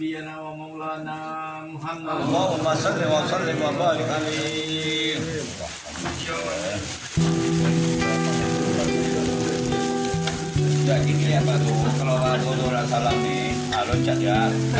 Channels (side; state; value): both; identical; correlation 1.00